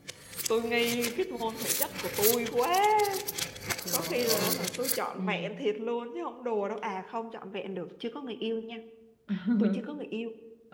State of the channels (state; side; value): identical; both; correlation 1.00